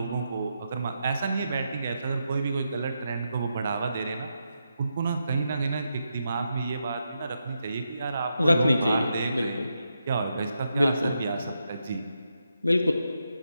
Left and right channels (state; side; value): inverted; both; correlation -0.84